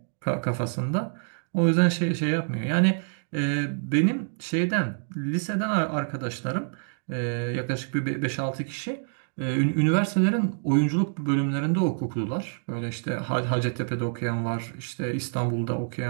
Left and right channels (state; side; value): silent; left; digital silence